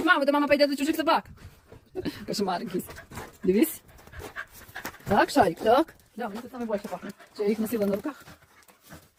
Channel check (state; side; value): identical; both; correlation 1.00